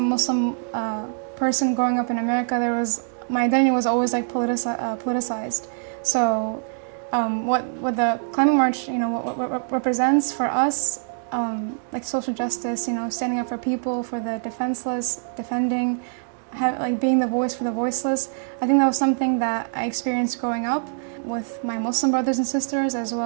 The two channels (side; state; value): left; silent; digital silence